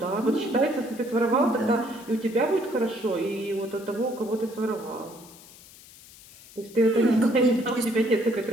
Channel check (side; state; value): left; noise; hiss, 21 dB below the sound